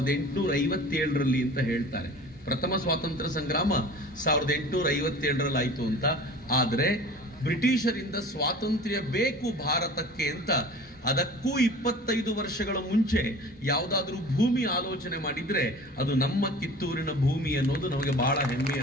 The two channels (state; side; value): normal; both; correlation 0.42